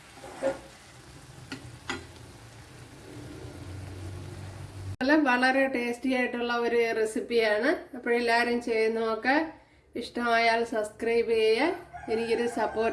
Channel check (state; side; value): identical; both; correlation 1.00